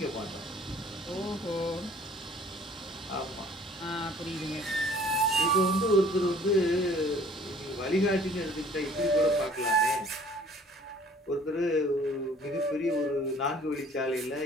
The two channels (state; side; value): normal; both; correlation 0.54